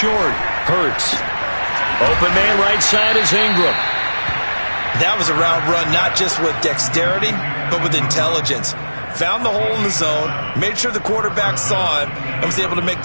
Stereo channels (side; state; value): both; inverted; correlation -1.00